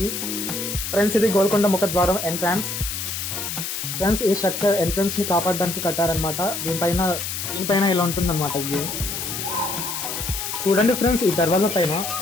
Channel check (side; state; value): left; noise; hiss, 4 dB below the sound